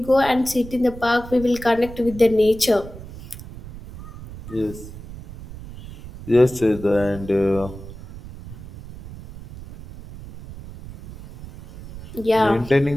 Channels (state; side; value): noise; right; rumble, 15 dB below the sound